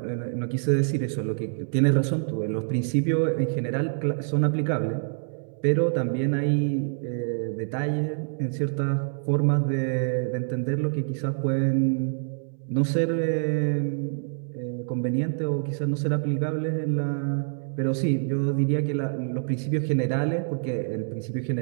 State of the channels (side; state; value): left; silent; 61 dB below the other